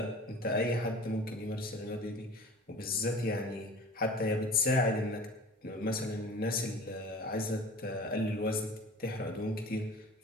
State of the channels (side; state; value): both; normal; correlation 0.42